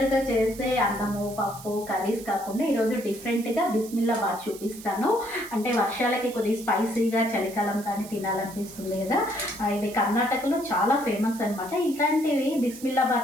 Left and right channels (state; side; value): noise; right; hiss, 16 dB below the sound